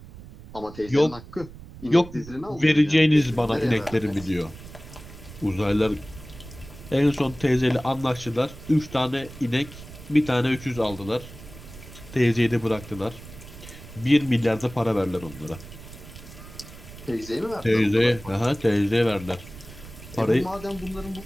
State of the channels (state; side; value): noise; right; rumble, 16 dB below the sound